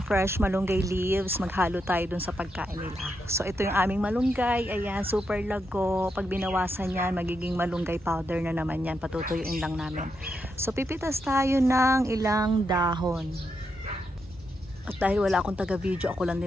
fresh malunggay leaves. Maghalo tayo dun sa pagkain nila. So ito yung aming malunggay. Ayan, super lago. Pag binawasan yan, magiging malunggay powder na naman yan. Patutuyuin lang namin. So pipitas tayo ng ilang dahon. At dahil wala akong taga-video, ako lang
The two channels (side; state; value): both; normal; correlation 0.83